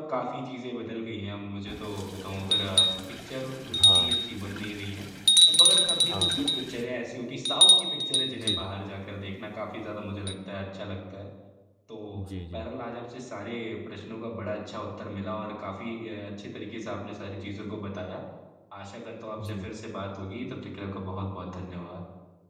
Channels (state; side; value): identical; both; correlation 1.00